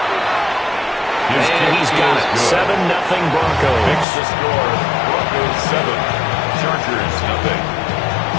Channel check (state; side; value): drops out; right; at 4.0 s